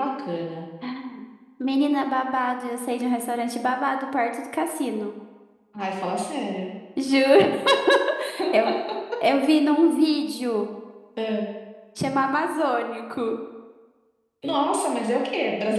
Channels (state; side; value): identical; both; correlation 1.00